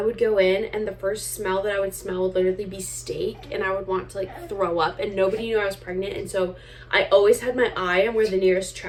would go in and the first smell that I would smell would literally be steak, and I would want to like throw up, and nobody knew I was pregnant. And so I always had my eye on where the nearest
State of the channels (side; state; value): both; identical; correlation 1.00